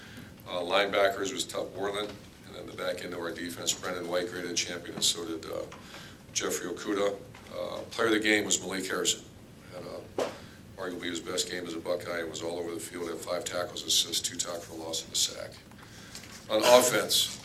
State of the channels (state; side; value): identical; both; correlation 1.00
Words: Linebackers was Tuck Borland. And then the back end of our defense, Brendan White, graded champion, and so did Jeffrey Okuda. Player of the game was Malik Harrison. Had arguably his best game as a Buckeye and was all over the field. Had 5 tackles, assists, 2 tackles for loss, and a sack. On offense,